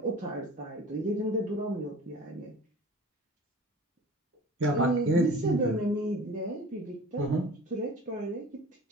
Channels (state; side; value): normal; both; correlation 0.41